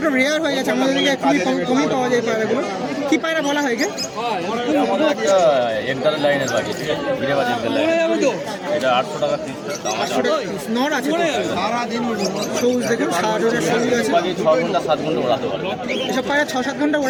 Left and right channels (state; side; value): identical; both; correlation 1.00